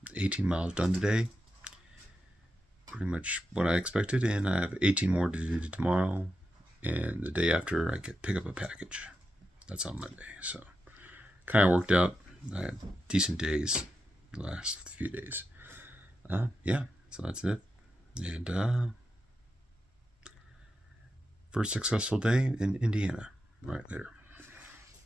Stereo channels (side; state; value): both; normal; correlation 0.88